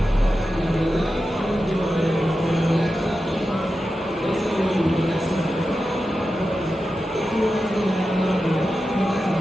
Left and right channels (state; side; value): normal; both; correlation 0.91